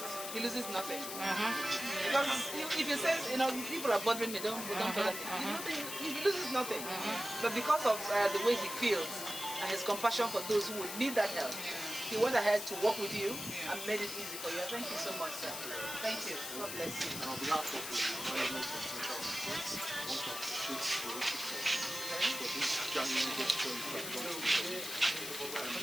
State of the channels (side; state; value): left; noise; hiss, 6 dB below the sound